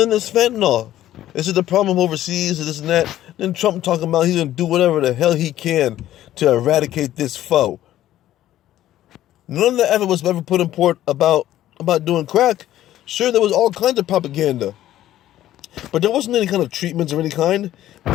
there's fentanyl. This is the problem overseas, and this and that. Then Trump talking about he's gonna do whatever the hell he can to eradicate this foe. None of the effort was ever put in port about doing crack. Sure, there was all kinds of propaganda, but there wasn't any kind of treatments of any kind,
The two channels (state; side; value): quieter; right; 13.2 dB